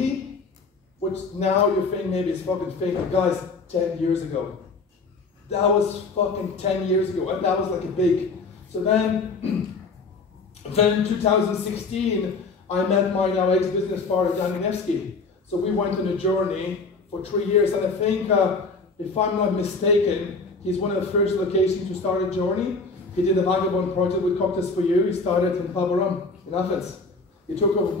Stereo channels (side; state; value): right; quieter; 4.0 dB